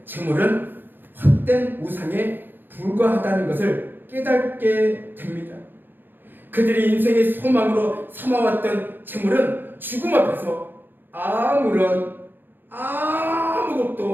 재물은 헛된 우상에 불과하다는 것을 깨닫게 됩니다. 그들이 인생의 소망으로 삼아왔던 재물은 죽음 앞에서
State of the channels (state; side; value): late; left; 0.094 ms